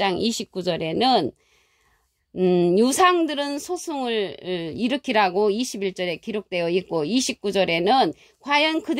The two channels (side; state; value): both; identical; correlation 1.00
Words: 29절에는 유상들은 소송을 일으키라고 21절에 기록되어 있고 29절에는 과연